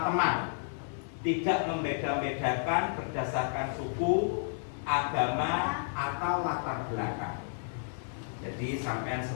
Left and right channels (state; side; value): silent; right; 57 dB below the other